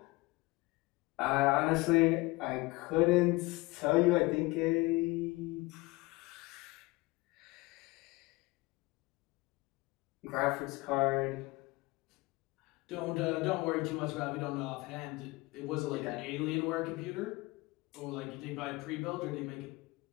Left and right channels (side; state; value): right; quieter; 22.5 dB